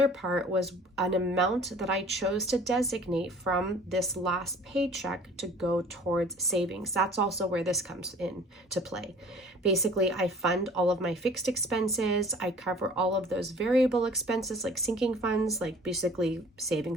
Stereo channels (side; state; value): both; normal; correlation 0.49